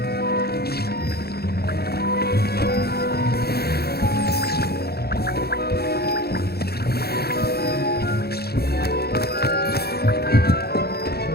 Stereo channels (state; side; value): late; right; 0.46 ms